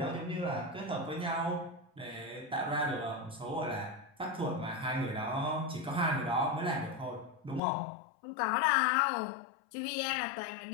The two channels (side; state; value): right; drops out; at 7.6 s